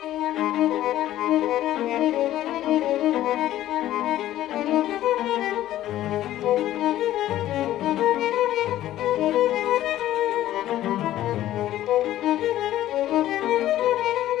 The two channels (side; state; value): right; quieter; 13.6 dB